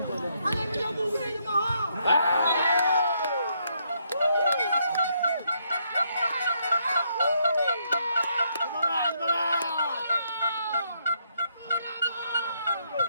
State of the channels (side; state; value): both; inverted; correlation -0.75